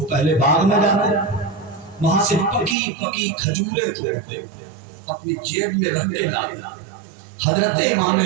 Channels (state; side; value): drops out; left; at 2.8 s